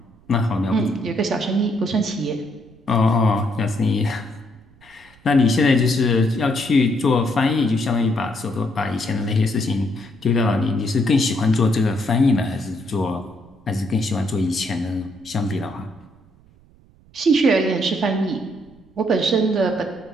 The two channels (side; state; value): right; noise; rumble, 28 dB below the sound